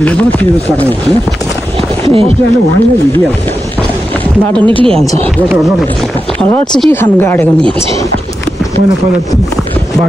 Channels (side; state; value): both; normal; correlation 0.89